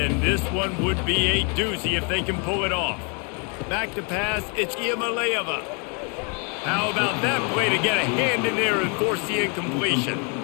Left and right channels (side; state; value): right; quieter; 35.7 dB